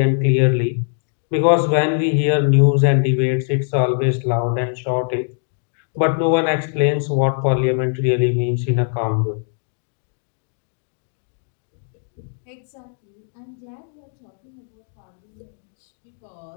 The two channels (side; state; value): right; silent; digital silence